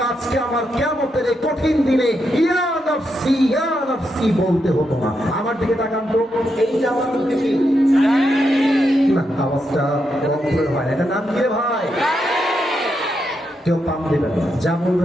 আজকে আমার কিয়ামতের এই কঠিন দিনে ইয়া নাফসি বলতে হতো না। আমার দিকে তাকান তো, এইটা আমার মুখে কি না, আওয়াজটা অক্ষর হয় না। এটা নাম কি রে ভাই? কেউ পাম দেবেন না, যা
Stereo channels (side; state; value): both; normal; correlation 0.83